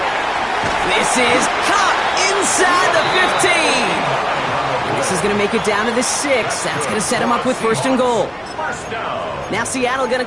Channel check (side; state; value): both; identical; correlation 1.00